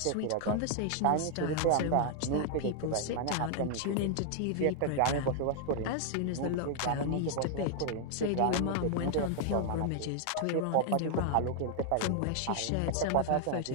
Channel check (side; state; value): both; different; correlation 0.00